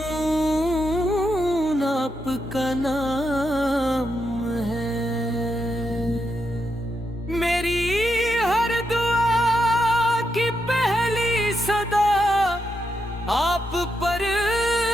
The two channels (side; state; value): both; normal; correlation 0.83